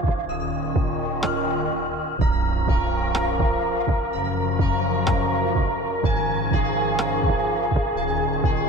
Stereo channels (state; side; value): normal; both; correlation 0.47